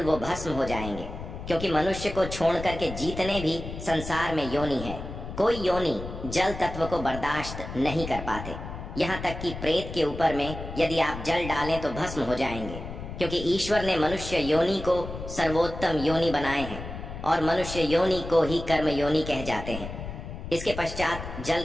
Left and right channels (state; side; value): noise; left; rumble, 9 dB below the sound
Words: वो भस्म हो जाएंगे। क्योंकि मनुष्य को छोड़ करके जितने भी संसार में योनि है, कोई योनि जल तत्व को बर्दाश्त नहीं कर पाते। यहाँ तक कि प्रेत के ऊपर में यदि आप जल डालें तो भस्म हो जाएंगे। क्योंकि ईश्वर ने मनुष्य योनि को सर्वोत्तम योनि बनाए हैं और मनुष्य योनि को ही कर्म योनि कह जाते हैं। इसके पश्चात जल